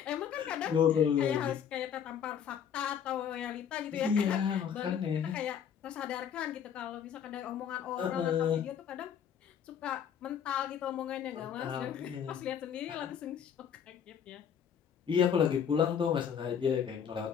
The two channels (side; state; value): right; quieter; 8.2 dB